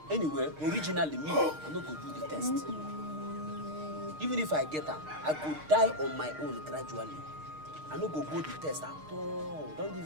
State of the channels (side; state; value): left; late; 6.5 ms